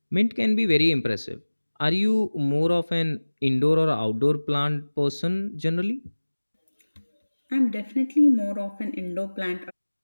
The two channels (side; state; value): both; inverted; correlation -1.00